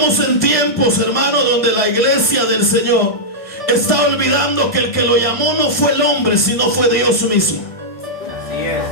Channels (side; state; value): right; late; 1.7 ms